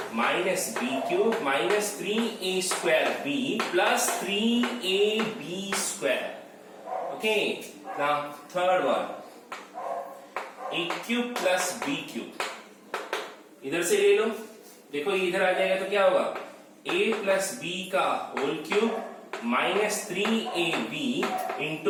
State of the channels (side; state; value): both; identical; correlation 1.00